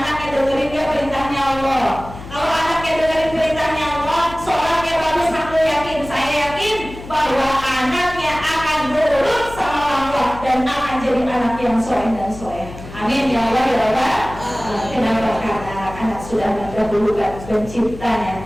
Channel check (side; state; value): left; noise; hum, 14 dB below the sound